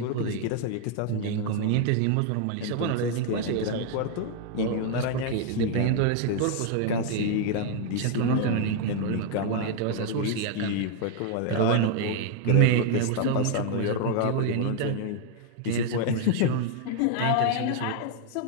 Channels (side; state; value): both; different; correlation 0.00